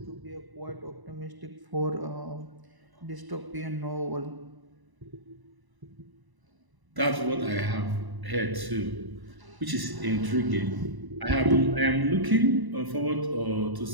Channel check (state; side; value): late; left; 1.0 ms